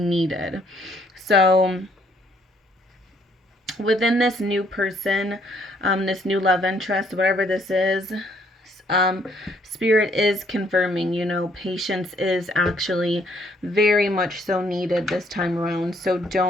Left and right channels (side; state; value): both; normal; correlation 0.67